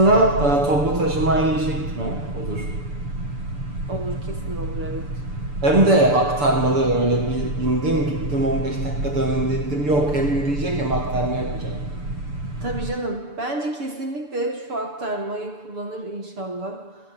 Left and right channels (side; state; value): left; late; 6.9 ms